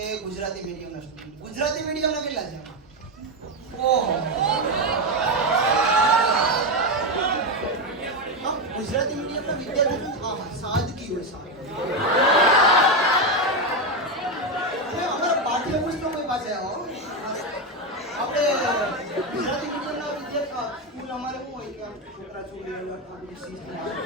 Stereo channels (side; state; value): both; normal; correlation 0.10